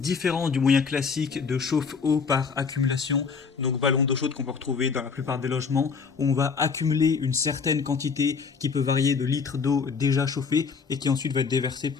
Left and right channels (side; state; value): right; quieter; 5.4 dB